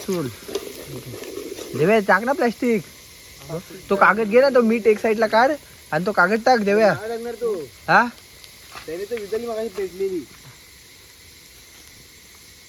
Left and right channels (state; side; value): identical; both; correlation 1.00